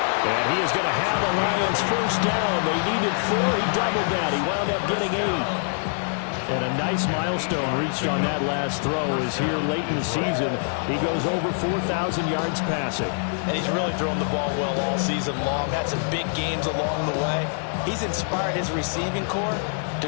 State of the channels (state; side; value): silent; right; 62 dB below the other